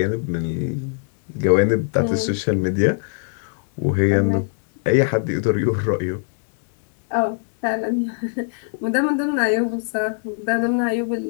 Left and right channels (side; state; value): right; silent; digital silence